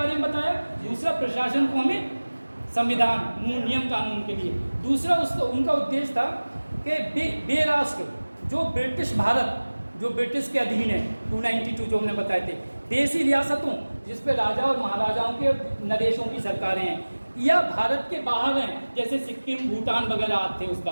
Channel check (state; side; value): inverted; both; correlation -1.00